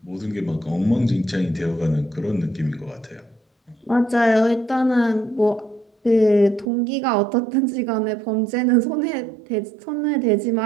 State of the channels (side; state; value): left; drops out; at 6.7 s